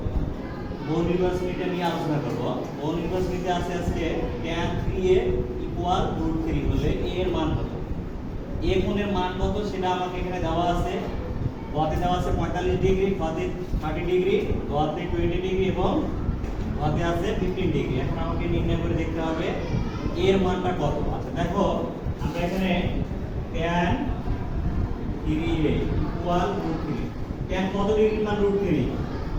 বহু নির্বাচনীটা নিয়ে আলোচনা করব। বহু নির্বাচনীতে আছে আজকে tan 3a = √3 হলে a এর মান কত। a কোণের মান কত সেটা আমাকে এখানে দেওয়া আছে। গতে দেওয়া আছে 45 ডিগ্রি, গতে 30 ডিগ্রি, গতে 20 ডিগ্রি এবং গতে আছে 15 ডিগ্রি। এখন আমাকে নির্ণয় করে দেখতে হবে a এর মানটা কত। আচ্ছা দেখো, আমরা এখানে tan 3a = √3। tan কত ডিগ্রির মান √3?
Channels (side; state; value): both; identical; correlation 1.00